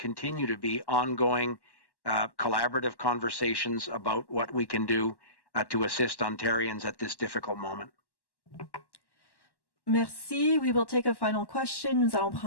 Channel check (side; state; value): right; late; 1.1 ms